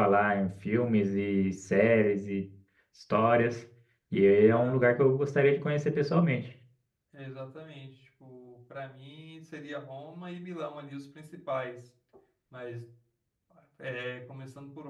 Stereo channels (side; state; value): both; identical; correlation 1.00